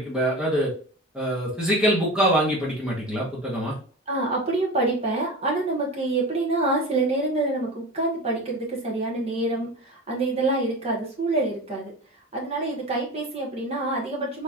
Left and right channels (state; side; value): normal; both; correlation 0.30